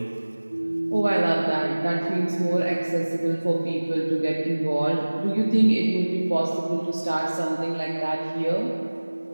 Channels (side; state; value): both; inverted; correlation -1.00